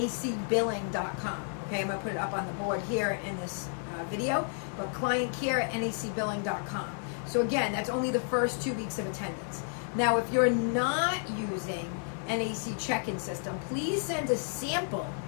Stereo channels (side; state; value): right; silent; 57 dB below the other